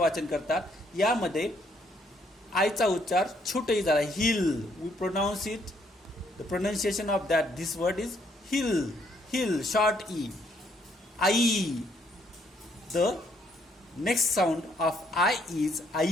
करतात. यामध्ये आयचा उच्चार छोटही झाला hill. We pronounce it, the pronunciation of that this word is hill. Hill short E. I. The next sound of I is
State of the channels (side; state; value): both; normal; correlation 0.69